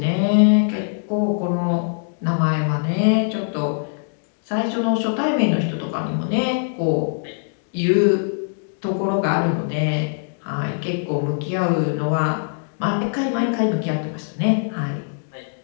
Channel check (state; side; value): silent; right; digital silence